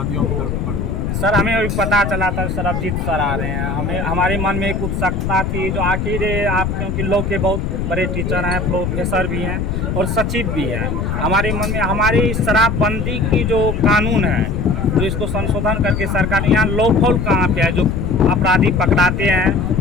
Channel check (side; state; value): left; noise; rumble, 2 dB below the sound